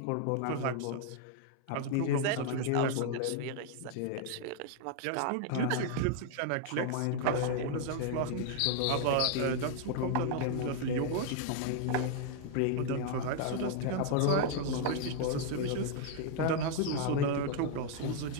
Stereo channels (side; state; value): both; different; correlation 0.00